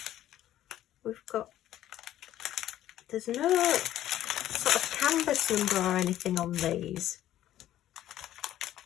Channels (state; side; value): quieter; right; 12.8 dB